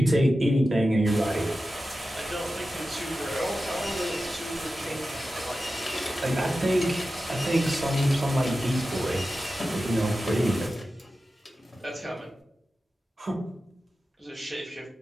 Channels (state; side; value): normal; both; correlation 0.93